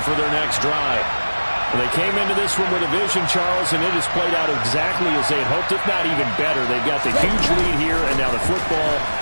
for their next drive. They came into this one with a vision, Charles, and it has played out exactly as they had hoped, if not even better. They've got the huge lead here, and now the football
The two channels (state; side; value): inverted; both; correlation -1.00